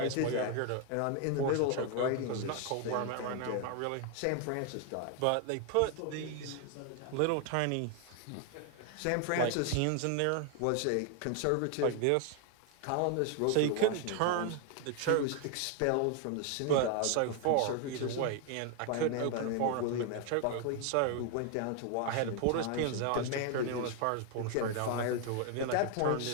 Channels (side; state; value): both; different; correlation 0.00